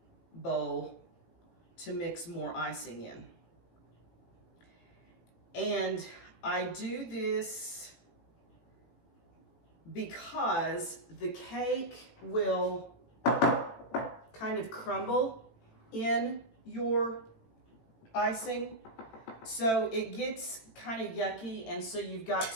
bowl to mix more icing in. And I do this because the cake will kind of crumble in your icing. So it gets kind of yucky, and so you've got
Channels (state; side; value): late; right; 18 ms